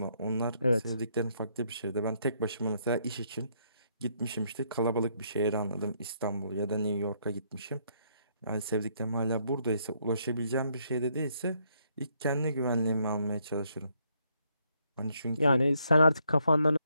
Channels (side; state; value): both; inverted; correlation -0.73